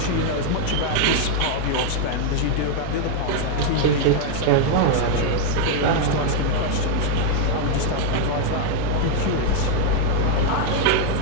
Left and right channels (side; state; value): both; different; correlation 0.00